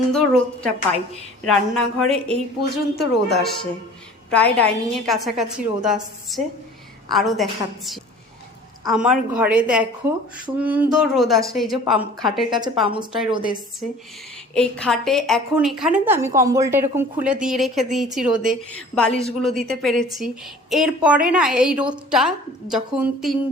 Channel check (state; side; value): normal; both; correlation 0.46